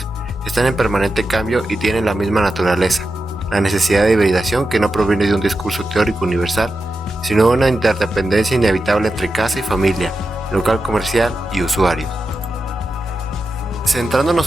están en permanente cambio y tienen la misma naturaleza, la necesidad de hibridación que no proviene de un discurso teórico universal, sino de una interdependencia inevitable entre casa y familia, local comercial y usuarios.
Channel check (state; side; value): normal; both; correlation 0.90